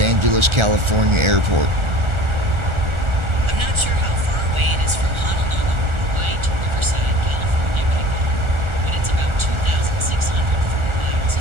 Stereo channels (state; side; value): late; left; 1.4 ms